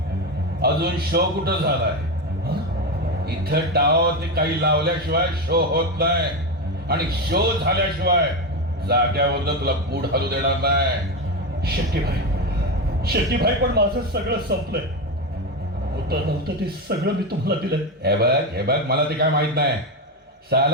अजून शो कुठं झालाय? इथं डाव ते काही लावल्याशिवाय शो होत नाही. आणि शो झाल्याशिवाय जाग्यावर तुला बूट हलू देणार नाही. शेट्टीभाई पण माझं सगळं संपलंय. होतं नव्हतं ते सगळं मी तुम्हाला दिलंय. हे बघ मला ते काय माहित नाही.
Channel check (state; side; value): normal; both; correlation 0.14